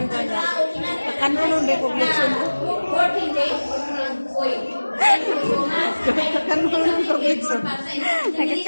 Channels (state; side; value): inverted; both; correlation -1.00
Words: ko na. Kanunon ba ko glitson? 14 days. Uy. Kanunon ko glitson.